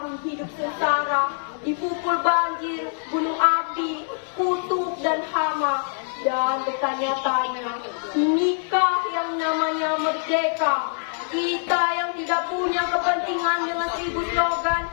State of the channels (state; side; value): silent; right; 58 dB below the other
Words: hidup sengsara, dipukul banjir, gunung api, kutub dan hama, dan bertanya-tanya, inikah yang namanya merdeka? Kita yang tidak punya kepentingan dengan 1000 slogan